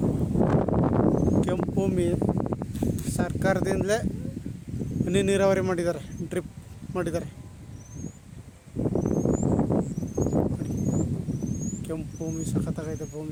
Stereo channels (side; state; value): both; identical; correlation 1.00